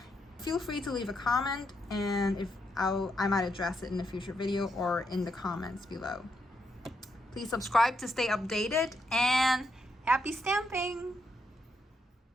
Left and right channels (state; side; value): normal; both; correlation 0.80